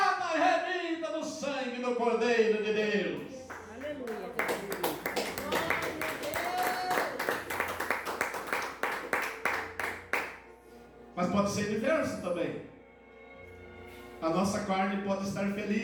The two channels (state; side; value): identical; both; correlation 1.00